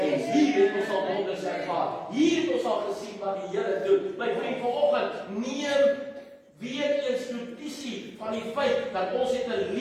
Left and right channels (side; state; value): both; identical; correlation 1.00